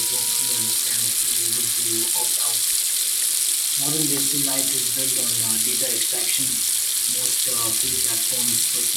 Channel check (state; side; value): identical; both; correlation 1.00